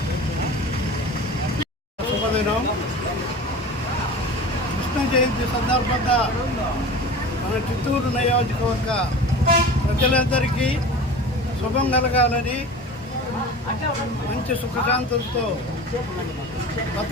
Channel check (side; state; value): both; normal; correlation 0.36